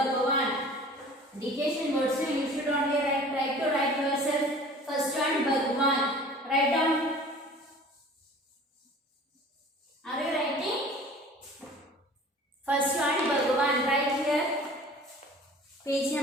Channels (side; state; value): both; normal; correlation 0.45